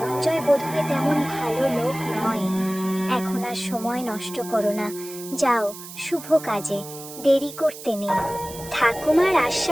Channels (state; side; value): noise; right; hiss, 14 dB below the sound